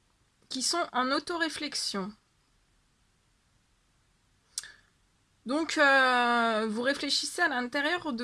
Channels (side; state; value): both; identical; correlation 1.00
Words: qui sont en auto-réflexion. Donc, vous réfléchissez à l'intérieur